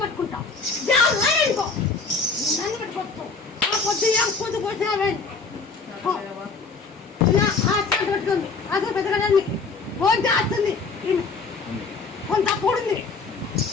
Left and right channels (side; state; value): right; quieter; 4.4 dB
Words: పట్టుకుంటా జావే అనుకో నన్ను పట్టుకోవచ్చు ఆ పొద్దు ఏం కూతు పోసినావే ఆ చేతి పట్టుకుంది అసలు పెద్దగడాన్ని ఫోన్ చేస్తుంది కొంత అప్పుడుంది